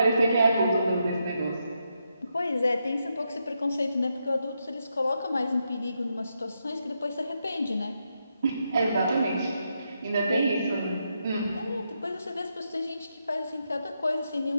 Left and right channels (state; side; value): inverted; both; correlation -0.82